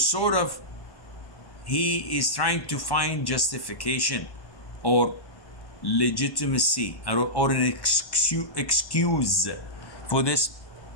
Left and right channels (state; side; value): late; right; 1.1 ms